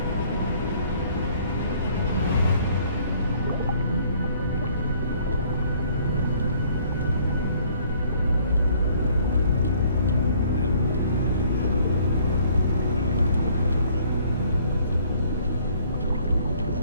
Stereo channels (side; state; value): both; inverted; correlation -0.60